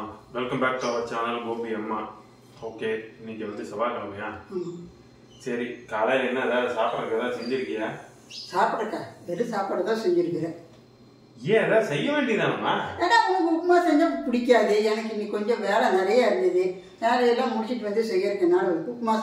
welcome back to our channel Gopi Amma. Okay, இன்னைக்கு வந்து செவ்வாய்க்கிழமையா? சரி, காலையில் என்ன ஏதாவது சாப்பிட்றதுக்கு ஏதாவது செஞ்சிருக்கியா? சாப்பிட்றக்கா வெறும் சாப்பாடு தான் செஞ்சிருக்கிறேன். ஏன் ஏதாவது செய்ய வேண்டியதானம்மா? ஏன்னா உனக்கு உப்புமா செஞ்சால் பிடிக்காது. எனக்கு இன்னைக்கு கொஞ்சம் வேலை நிறைய இருந்தது. வேலையெல்லாம் முடிச்சுட்டு வந்து செய்யறதுனால உப்புமா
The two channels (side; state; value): both; identical; correlation 1.00